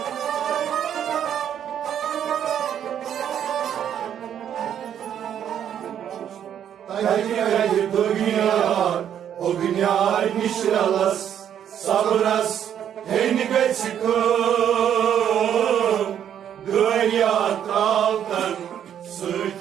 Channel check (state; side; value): quieter; left; 9.5 dB